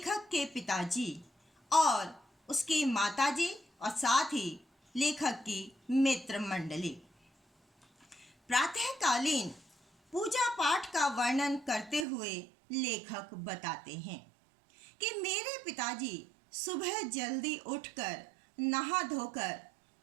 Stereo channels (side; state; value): left; drops out; at 12.1 s